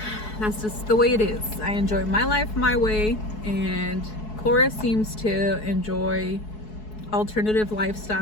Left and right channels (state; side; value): late; right; 4.7 ms